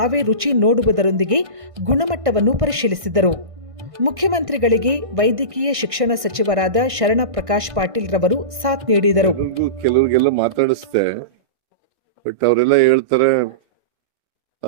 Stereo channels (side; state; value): left; late; 1.6 ms